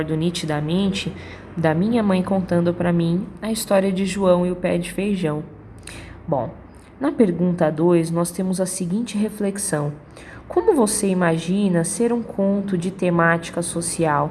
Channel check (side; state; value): both; identical; correlation 1.00